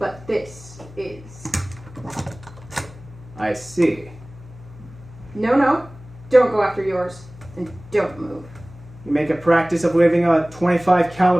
this is. I see. No, don't go after yours, and don't move. You make a practice of waving a .25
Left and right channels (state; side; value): noise; left; hum, 19 dB below the sound